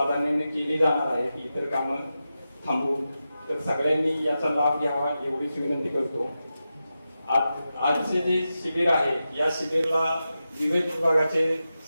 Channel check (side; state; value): both; inverted; correlation -0.91